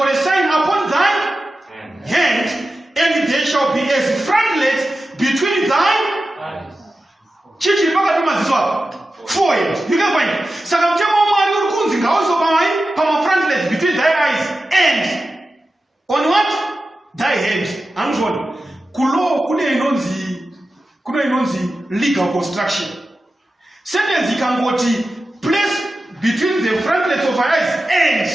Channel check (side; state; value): both; normal; correlation 0.93